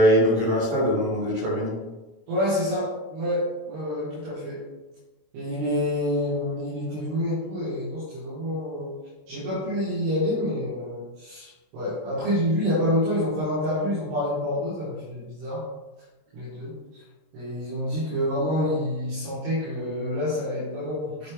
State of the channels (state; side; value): late; left; 26 ms